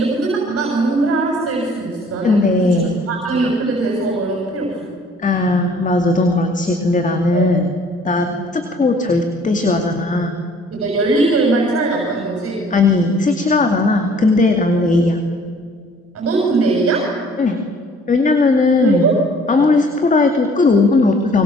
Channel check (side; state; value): both; normal; correlation 0.55